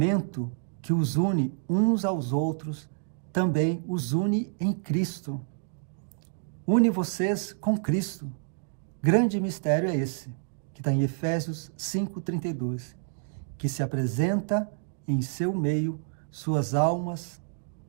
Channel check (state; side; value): silent; left; digital silence